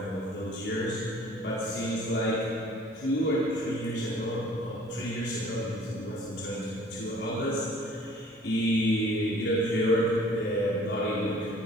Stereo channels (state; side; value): normal; both; correlation 0.52